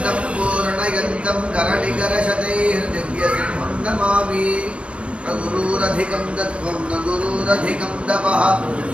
पूर्णयन्तं करणिकरशतैर्दिव्यसिंहं नमामि न गुरुरधिकं तत्त्वं न गुरुरधिकं तपः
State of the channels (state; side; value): late; left; 0.060 ms